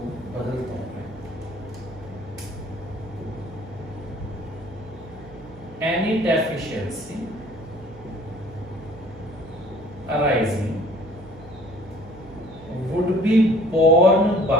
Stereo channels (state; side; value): noise; right; hum, 20 dB below the sound